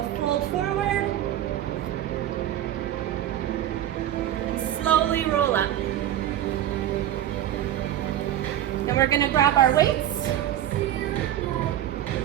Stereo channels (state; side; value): quieter; left; 11.9 dB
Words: fold forward. And slowly roll up. Then we're going to grab our weights.